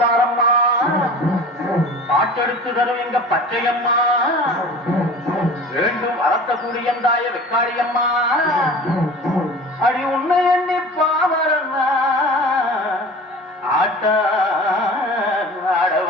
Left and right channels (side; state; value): both; normal; correlation 0.40